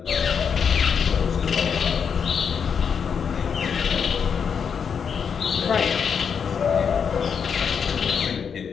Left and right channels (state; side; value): quieter; right; 6.8 dB